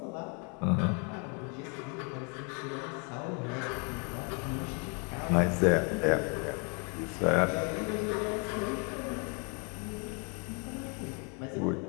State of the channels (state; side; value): quieter; right; 35.9 dB